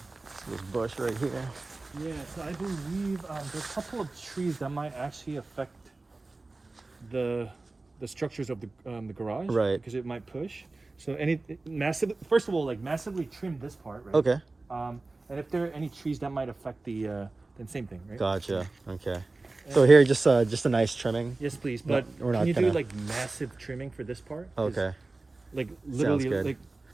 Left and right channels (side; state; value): left; quieter; 3.3 dB